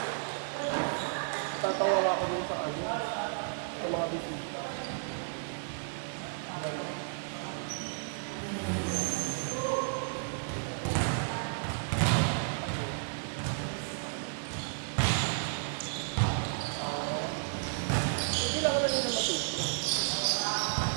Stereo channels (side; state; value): left; silent; digital silence